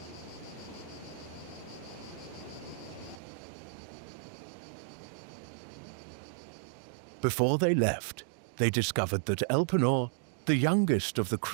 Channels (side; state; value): left; drops out; at 3.2 s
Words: Before they left, they discovered that Elpenor, the youngest of the